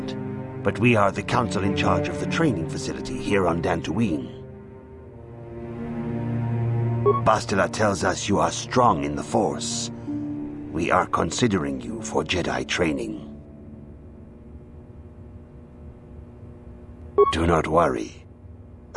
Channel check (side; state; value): both; identical; correlation 1.00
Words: but we are the council in charge of the training facility here on Dantooine. Bastila tells us you are strong in the Force. We are considering you for Jedi training. Do not worry.